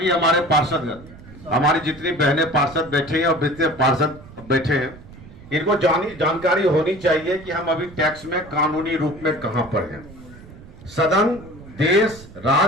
हमारे पार्षदगण, हमारी जितनी बहनें पार्षद बैठे हैं और जितने पार्षद बैठे हैं, इनको जानकारी होनी चाहिए कि हम अभी टैक्स में कानूनी रूप में कहां पर हैं। सदन, देश,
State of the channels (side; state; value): right; noise; rumble, 19 dB below the sound